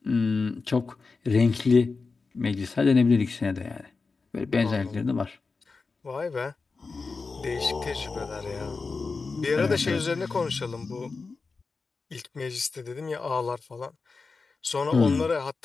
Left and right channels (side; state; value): right; quieter; 4.3 dB